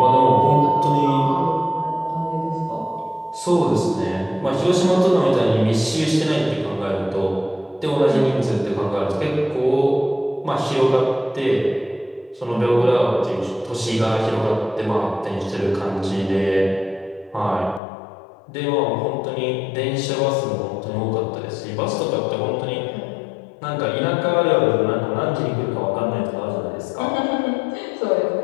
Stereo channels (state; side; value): drops out; right; at 17.8 s